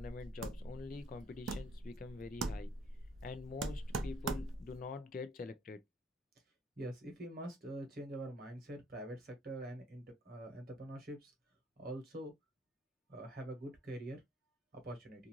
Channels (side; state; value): both; normal; correlation 0.64